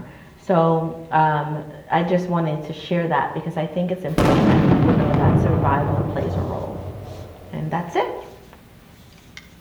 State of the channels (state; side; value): identical; both; correlation 1.00